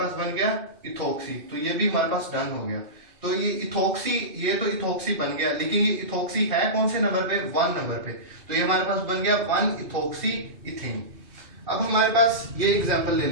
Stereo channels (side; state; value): left; late; 2.6 ms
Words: बन गया इथोक्सी, तो ये भी हमारे पास डन हो गया। तो ये इथोक्सी, ये तो इथोक्सी बन गया, लेकिन ये इथोक्सी है कौन से नंबर पे, 1 नंबर पे। तो ये हमारे पास बन गया 1 इथोक्सी इथेन। अब हमारे पास ये एग्जांपल ले